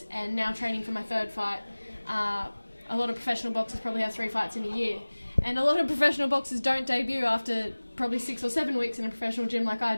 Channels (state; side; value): inverted; both; correlation -1.00